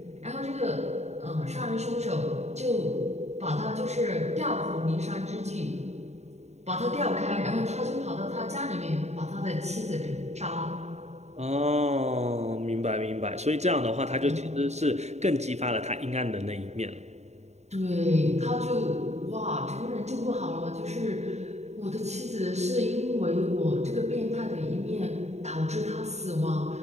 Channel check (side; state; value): left; late; 0.32 ms